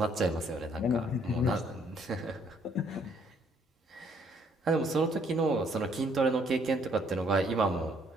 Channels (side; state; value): both; normal; correlation 0.66